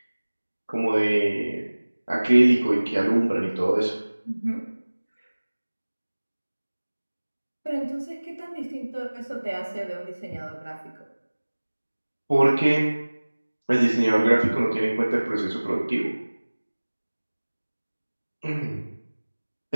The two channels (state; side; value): inverted; both; correlation -1.00